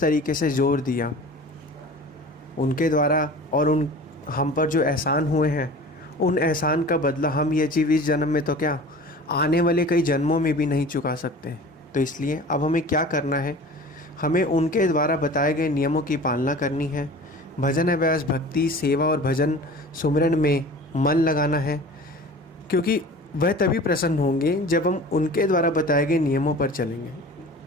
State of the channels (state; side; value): normal; both; correlation 0.40